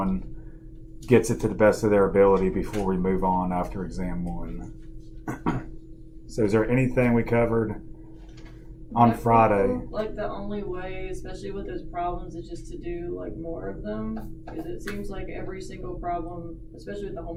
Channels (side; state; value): both; identical; correlation 1.00